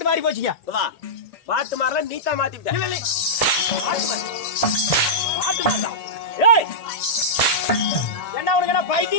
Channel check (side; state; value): right; late; 1.8 ms